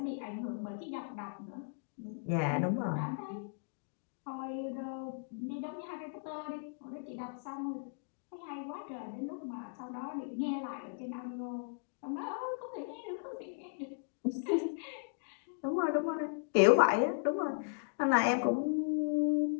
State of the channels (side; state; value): right; silent; digital silence